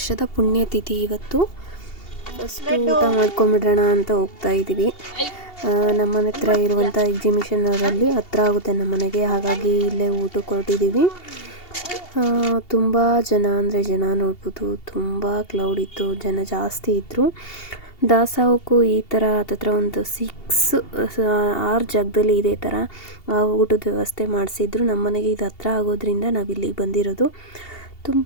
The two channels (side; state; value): right; late; 2.7 ms